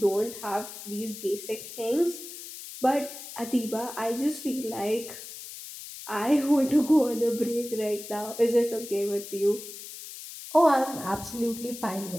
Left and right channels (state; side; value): noise; left; hiss, 12 dB below the sound